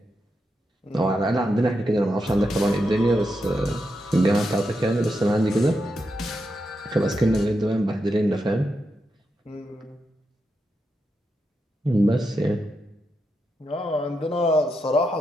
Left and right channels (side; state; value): both; normal; correlation 0.85